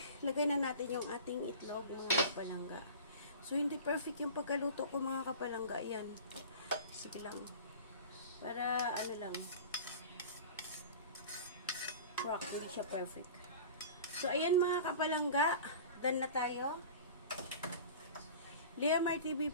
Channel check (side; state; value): both; inverted; correlation -0.37